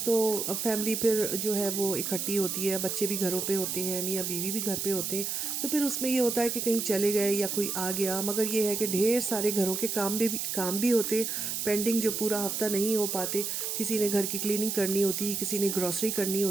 فیملی پھر جو ہے وہ اکٹھی ہوتی ہے، بچے بھی گھروں پہ ہوتے ہیں، میاں بیوی بھی گھر پہ ہوتے ہیں، تو پھر اس میں یہ ہوتا ہے کہ کہیں چلے گئے یا کوئی آ گیا، مگر یہ ہے کہ ڈھیر سارے گھروں کے کام بھی ہوتے پینڈنگ، جو پورا ہفتہ نہیں ہو پاتے۔ کسی نے گھر کی کلیننگ کرنی ہوتی، کسی نے گروسری کرنی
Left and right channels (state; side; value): noise; right; hiss, 2 dB below the sound